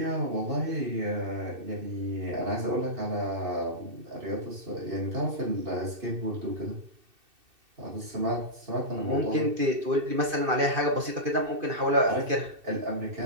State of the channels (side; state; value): left; late; 2.6 ms